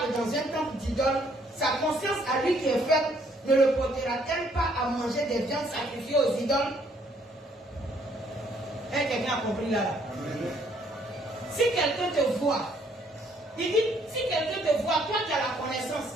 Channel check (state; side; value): normal; both; correlation 0.66